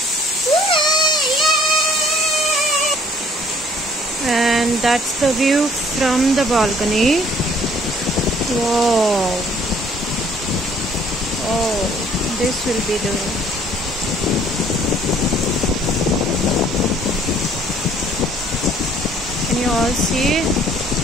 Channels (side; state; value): both; normal; correlation 0.58